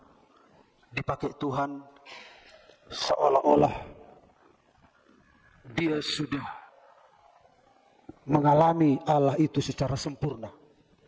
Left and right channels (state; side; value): identical; both; correlation 1.00